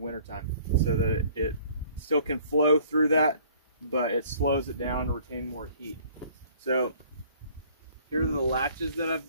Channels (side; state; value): both; inverted; correlation -0.55